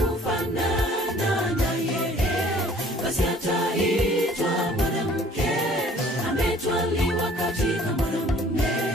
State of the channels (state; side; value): normal; both; correlation 0.54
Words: naye, basi ataitwa mwanamke ametwaliwa katika mwanamume.